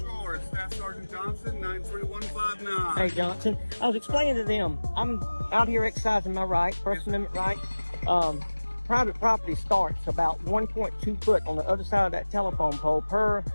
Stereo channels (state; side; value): inverted; both; correlation -1.00